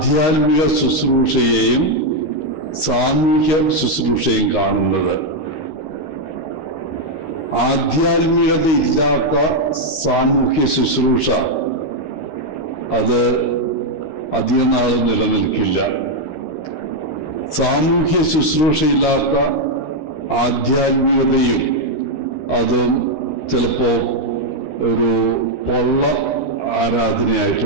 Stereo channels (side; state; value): right; late; 13 ms